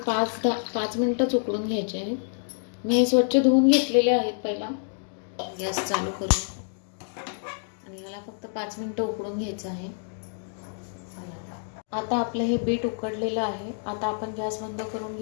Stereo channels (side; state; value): right; silent; digital silence